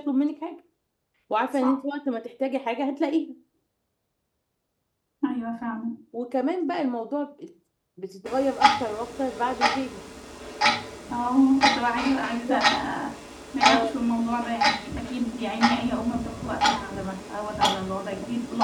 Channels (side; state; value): both; identical; correlation 1.00